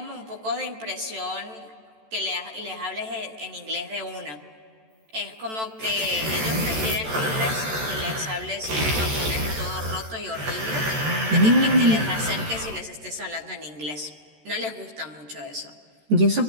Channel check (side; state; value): left; late; 14 ms